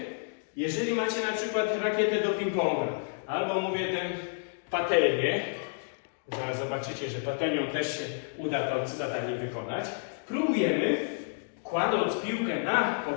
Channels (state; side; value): silent; right; digital silence